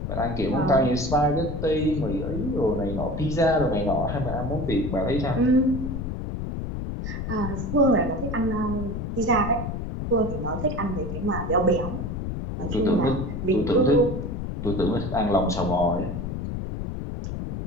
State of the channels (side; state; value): left; noise; rumble, 4 dB below the sound